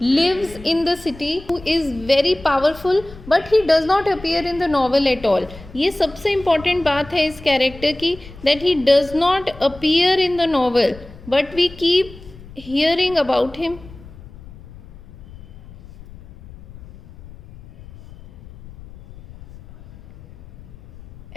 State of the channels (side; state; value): left; noise; rumble, 19 dB below the sound